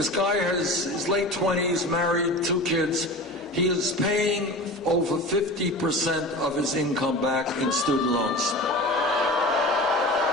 guy has his late 20s, married, 2 kids. He is paying over 50% of his income back in student loans.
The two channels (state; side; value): normal; both; correlation 0.33